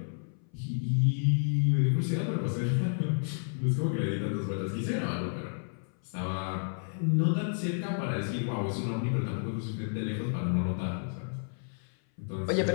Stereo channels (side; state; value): right; silent; 57 dB below the other